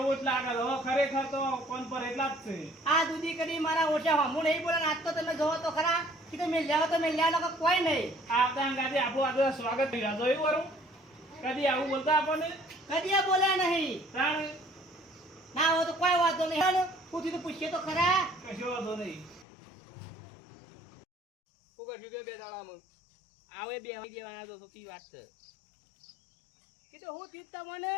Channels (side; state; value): right; drops out; at 19.5 s